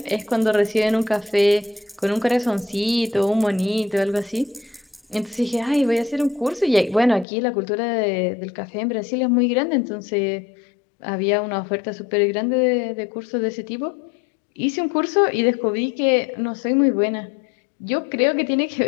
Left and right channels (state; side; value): drops out; right; at 7.2 s